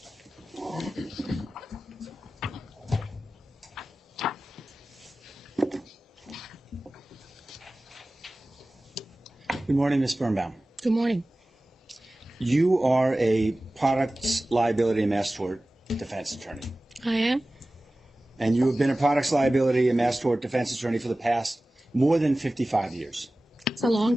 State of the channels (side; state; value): both; normal; correlation 0.97